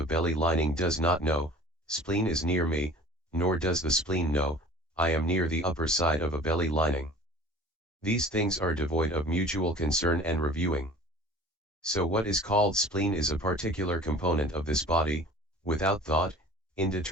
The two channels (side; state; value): both; normal; correlation 0.44